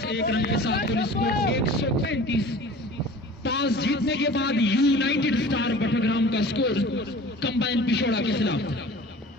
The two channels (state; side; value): normal; both; correlation 0.42